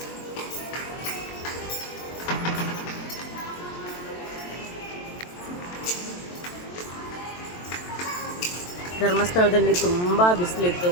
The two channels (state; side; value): late; right; 23 ms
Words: ಧರ್ಮಸ್ಥಳದಲ್ಲಿ ತುಂಬ ಬಿಸಿಲಿತ್ತು,